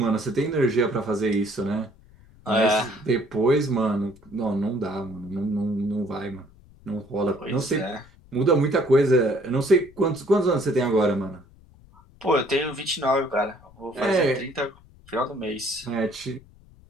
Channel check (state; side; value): noise; left; rumble, 25 dB below the sound